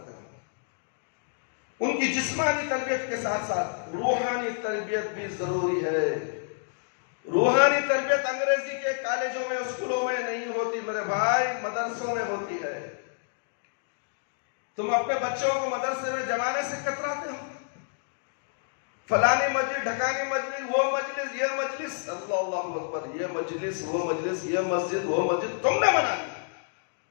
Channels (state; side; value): silent; right; digital silence